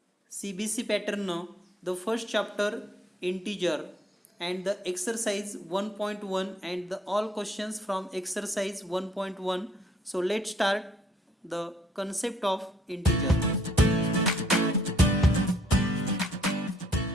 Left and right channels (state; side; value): normal; both; correlation 0.65